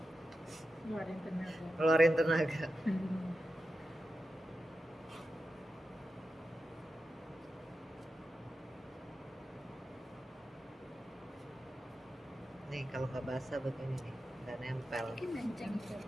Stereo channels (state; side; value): normal; both; correlation 0.91